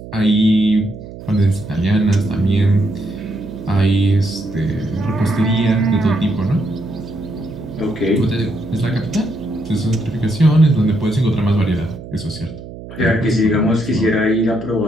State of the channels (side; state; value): right; noise; hum, 14 dB below the sound